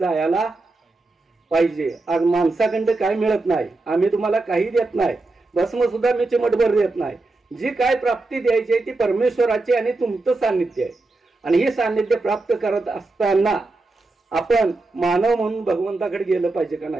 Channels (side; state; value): left; quieter; 3.2 dB